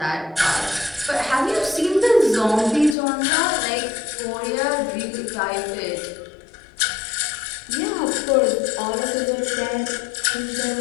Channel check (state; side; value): drops out; right; at 3.0 s